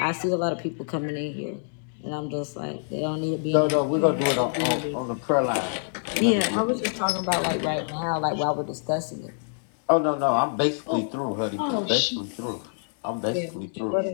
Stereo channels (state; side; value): silent; right; digital silence